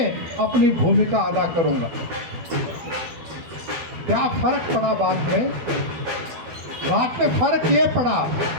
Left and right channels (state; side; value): late; left; 12 ms